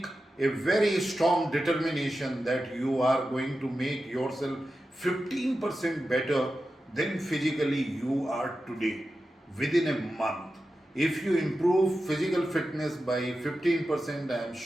a very strong determination that you are going to make yourself 15% better than physically you are today within a month. If you improve physical fitness by 15%, I am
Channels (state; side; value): normal; both; correlation 0.92